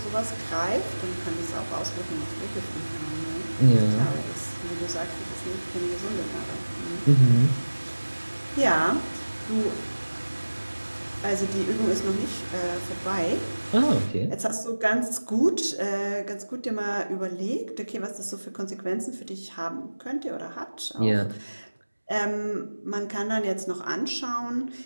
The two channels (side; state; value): both; inverted; correlation -1.00